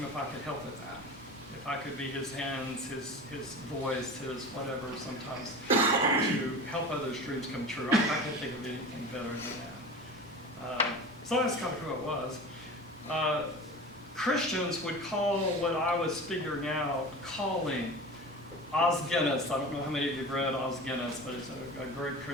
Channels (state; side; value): normal; both; correlation 0.34